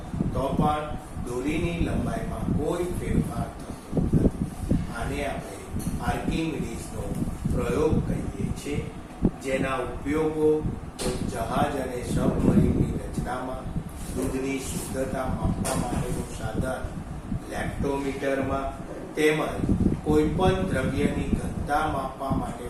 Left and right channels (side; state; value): both; identical; correlation 1.00